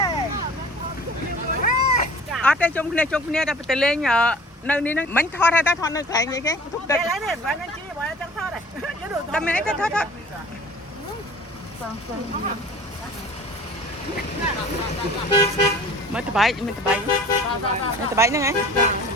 អត់ទេជុំគ្នាតែទៅលេងនៅនេះហ្នឹងមិនថតហើយតែថតនៅកន្លែងនេះគេទុកទឹកនេះបានជីបើចង់ថតហ៎តែមានអីទៅថត mới từ bảy nữa ngay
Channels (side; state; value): both; normal; correlation 0.45